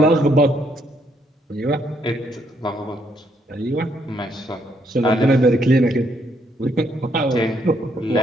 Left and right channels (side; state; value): both; normal; correlation 0.73